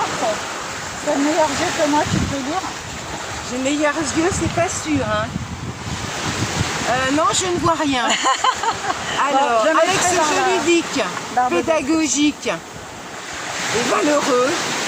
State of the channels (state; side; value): identical; both; correlation 1.00